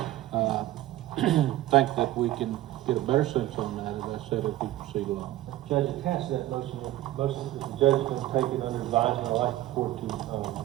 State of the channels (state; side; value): quieter; left; 15.3 dB